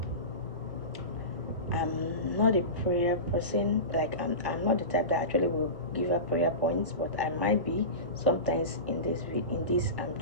I'm not a prayer person. Like I'm not the type that actually will give her prayer points, but I might be sometimes in this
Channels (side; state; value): left; late; 1.1 ms